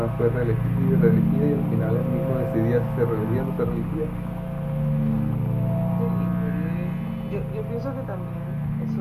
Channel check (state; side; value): identical; both; correlation 1.00